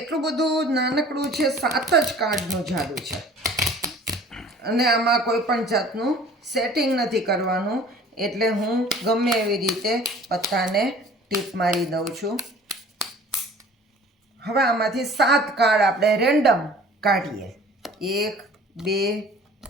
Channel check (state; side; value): normal; both; correlation 0.48